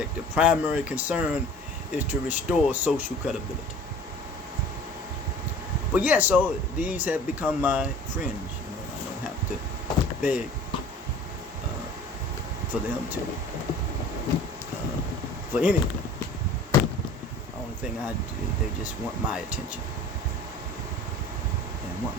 the primary concern is to restore social credibility. But so these have become my friends. I don't have to beg for them to, for anything. The only thing I do, they just want my attention and want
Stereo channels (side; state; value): both; normal; correlation 0.45